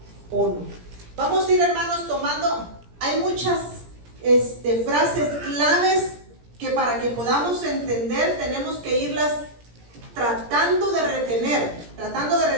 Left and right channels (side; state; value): left; late; 17 ms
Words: 1. Vamos a ir, hermanos, tomando, hay muchas frases claves que para que podamos entender tenemos que irlas tratando de